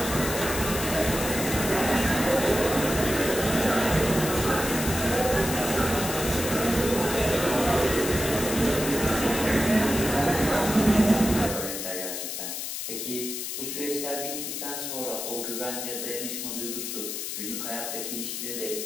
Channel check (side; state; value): left; noise; hiss, 5 dB below the sound